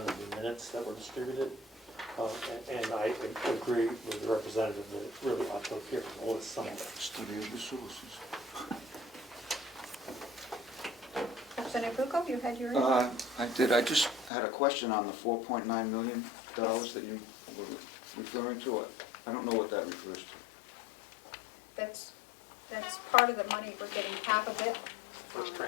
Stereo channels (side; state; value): right; drops out; at 14.3 s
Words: of the minutes that were distributed. And I agree with the representative that it really ought to appear in the list somewhere. Study of the sources. Representative Bucco, you had your? I did, I just had a question on the $4.9 million that you were referring to. I don't know what that refers to. That's part of the money. We're getting half of it First